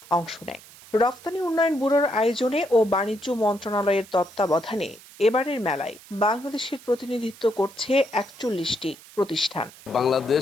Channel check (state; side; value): noise; right; hiss, 21 dB below the sound